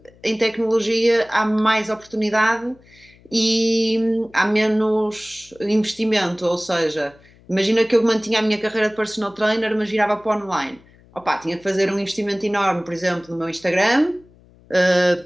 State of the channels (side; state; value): left; noise; hum, 28 dB below the sound